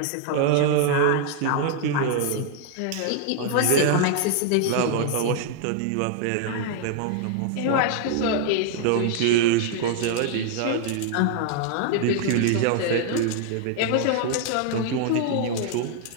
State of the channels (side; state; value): both; different; correlation 0.00